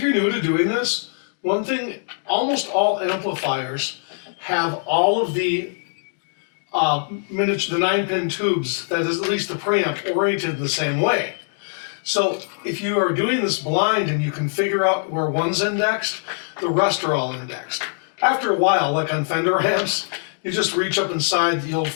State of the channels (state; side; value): silent; right; 63 dB below the other